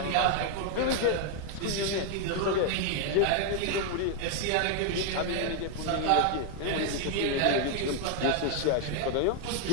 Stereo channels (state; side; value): different; both; correlation 0.00